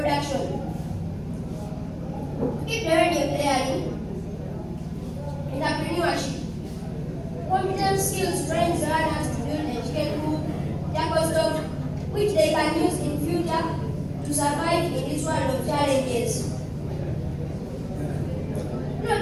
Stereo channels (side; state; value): both; identical; correlation 1.00